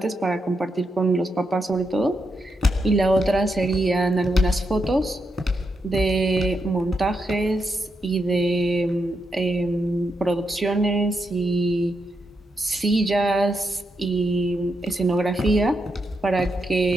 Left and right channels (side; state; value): both; normal; correlation 0.83